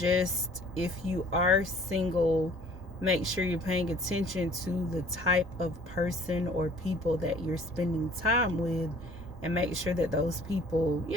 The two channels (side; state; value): both; normal; correlation 0.53